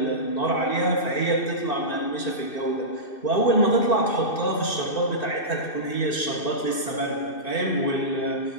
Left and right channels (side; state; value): right; late; 2.6 ms